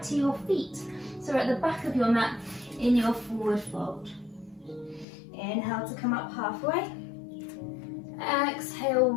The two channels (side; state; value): right; drops out; at 5.1 s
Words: to your feet. So we're at the back of your mat in your forward fold. Inhale to come up halfway. Exhale,